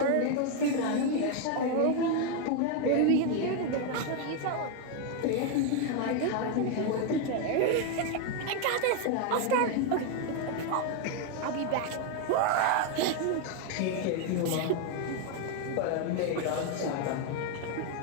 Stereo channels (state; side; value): different; both; correlation 0.01